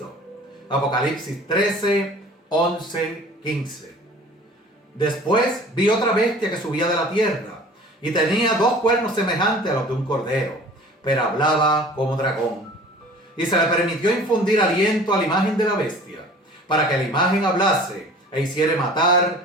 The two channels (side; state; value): both; normal; correlation 0.46